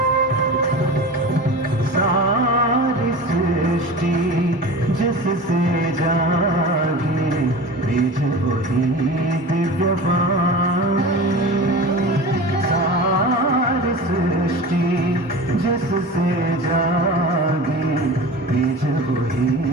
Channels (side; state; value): both; normal; correlation 0.34